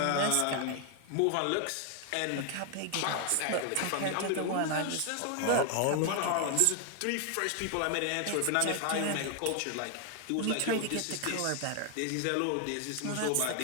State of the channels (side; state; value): both; different; correlation 0.01